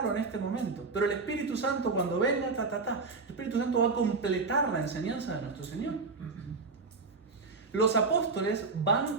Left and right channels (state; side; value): quieter; left; 4.2 dB